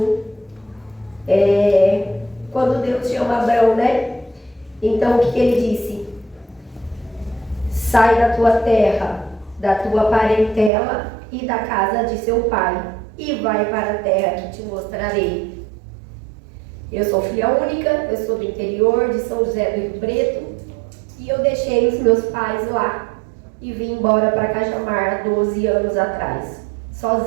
Quando Deus chama Abrão, né? Então o que ele disse? Sai da tua terra, da tua parentela e da casa de seu pai, e vai para a terra que te mostrarei. Eu sou filha única, eu sou do interior de São José do Rio Preto, e eu deixei os meus pais lá e vim embora para Cajamar há 12 anos atrás,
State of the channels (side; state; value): left; drops out; at 10.7 s